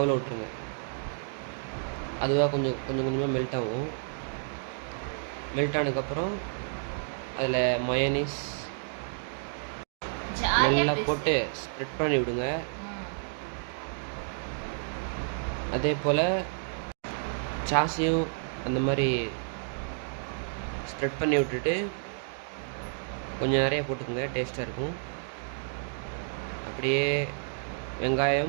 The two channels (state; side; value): silent; left; digital silence